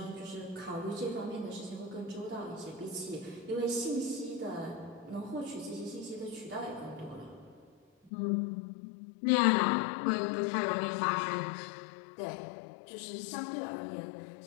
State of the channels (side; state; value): right; drops out; at 8.1 s